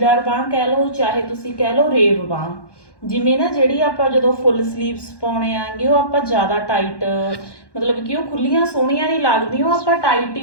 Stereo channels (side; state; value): right; late; 1.1 ms